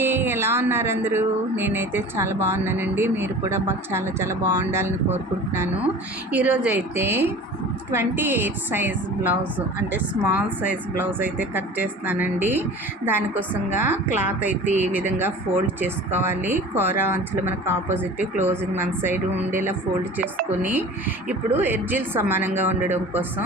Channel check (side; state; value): both; normal; correlation 0.40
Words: ఎలా ఉన్నారు అందరూ? నేనైతే చాలా బాగున్నానండి. మీరు కూడా చాలా చాలా బాగుండాలని కోరుకుంటున్నాను. ఈరోజైతే 28 సైజ్ బ్లౌజ్ అంటే స్మాల్ సైజ్ బ్లౌజ్ అయితే కట్ చేస్తున్నానండి. దానికోసంగా క్లాత్ అయితే ఈ విధంగా ఫోల్డ్ చేసుకోవాలి. కూర అంచులు మనకు ఆపోజిట్ క్లోజింగ్ మన సైడ్ ఉండేలా ఫోల్డ్ చేసుకొని ఇప్పుడు ఎడ్జిల్ సమానంగా ఉండడం కోసం